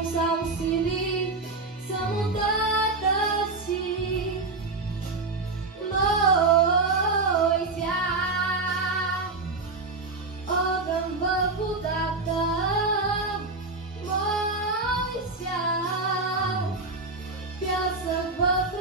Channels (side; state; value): left; quieter; 3.6 dB